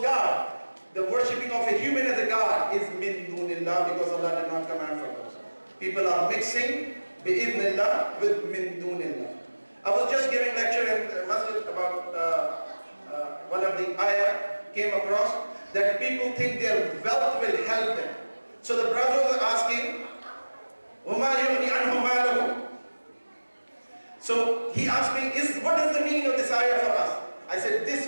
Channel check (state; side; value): inverted; both; correlation -1.00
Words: god, the worshipping of a human as a god is min dunillah, because Allah did not command for those. People are mixing bi-idhnillah with min dunillah. I was just giving lecture in the masjid about one of the ayah came across that people think their wealth will help them. So the brother was asking, وَمَا يُغْنِي عَنْهُ مَالَهُ. So he asked me, what is the meaning of this ayah for us? I said, this